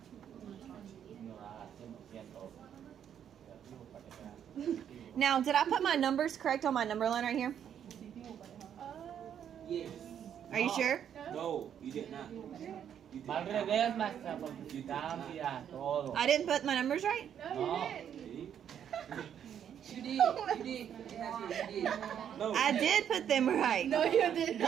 Now, did I put my numbers correct on my number line right here? Yes. Are you sure? No, you did not. Va al revés, maestra, porque cambia todo. I didn't put my numbers right? No. You did. You did. You did. No. I did put them right. No, you did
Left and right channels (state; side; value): quieter; left; 9.1 dB